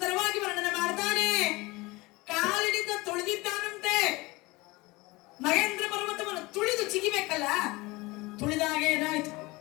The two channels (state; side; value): quieter; right; 22.6 dB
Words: ವರ್ಣನೆ ಮಾಡ್ತಾನೆ. ಕಾಲಿನಿಂದ ತುಳಿದಿದ್ದಾನಂತೆ. ಮಹೇಂದ್ರ ಪರ್ವತವನ್ನು ತುಳಿದು ಚಿಗಿಬೇಕಲ್ಲ, ತುಳಿದಾಗ ಏನಾಯ್ತು?